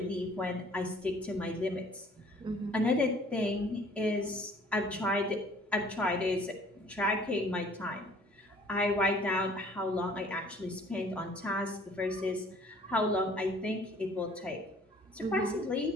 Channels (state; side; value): normal; both; correlation 0.54